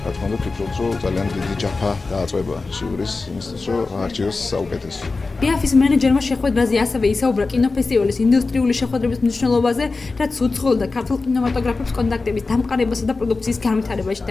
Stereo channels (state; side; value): quieter; right; 3.8 dB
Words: თქმა უნდა, ვფიქრობ, რომ ძალიან დიდი ჯაფა დააწყვება ჟიურის იმისთვის, რომ არჩიოს საუკეთესო. ბიაფის მენეჯერმა შეხვედრაზე ასევე ისაუბრა კინოფესტივალის ინდუსტრიული შეხვედრების მნიშვნელობაზე, რაც უცხოელ და ქართულ კინემატოგრაფებს კონტაქტების დამყარებასა და პროდუქციის განვითარებაში